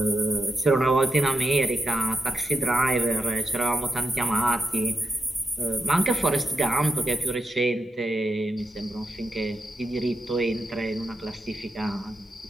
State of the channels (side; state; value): both; normal; correlation 0.84